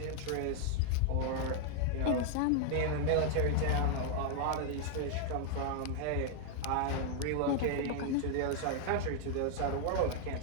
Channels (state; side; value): different; both; correlation 0.00